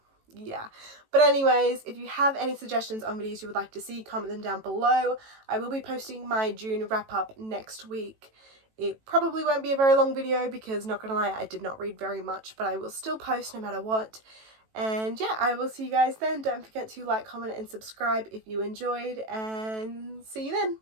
yeah. But anyways, if you have any suggestions on videos you would like to see, comment them down below. I will be posting my June wrap up next week. It probably won't be a very long video because, not gonna lie, I did not read very much, but I will still post no matter what. And yeah, I will see you guys then. Don't forget to like, comment and subscribe if you enjoyed, and see you then.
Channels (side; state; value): left; late; 18 ms